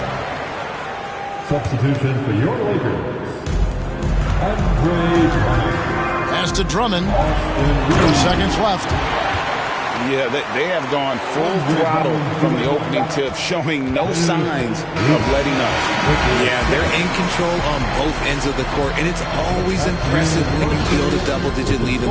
Substitution for your Lakers. Andre Drummond. Pass to Drummond. 2 seconds left. Yeah, they have gone full throttle from the opening tip, showing no signs of letting up. Yeah, they're in control on both ends of the court, and it's always impressive when you build a double-digit lead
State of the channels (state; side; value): identical; both; correlation 1.00